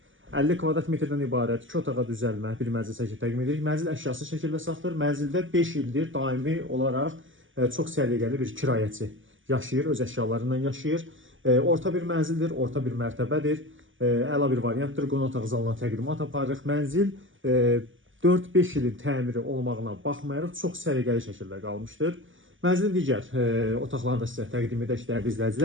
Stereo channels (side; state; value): left; late; 0.57 ms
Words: 50 kvadrat metrdən ibarət 2 otağa düzəlmə bir mənzil şəkli təqdim edirik. Mənzil əşyası şəkildə satılır. Mənzildə 5 ildir daimi olaraq çox səliqəli bir kirayəçi yaşayır, öz əşyalarından yaşayır. Orta bir mənzildir, orta bir mərtəbədir. Əla bir variantdır. Qonaq otaq zalına təqdimat aparırıq. Mənzil 4-5 ilin təmiri olmağına baxmayaraq çox səliqəli şəkildə qalmışdır. Mənzilin digər otaqlarını da sizə təqdim edək, dəyərli